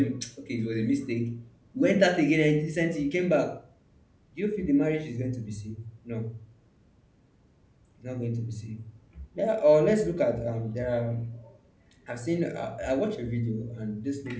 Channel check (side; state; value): both; identical; correlation 1.00